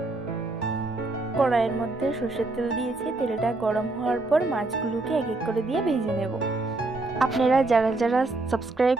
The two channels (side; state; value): left; quieter; 3.1 dB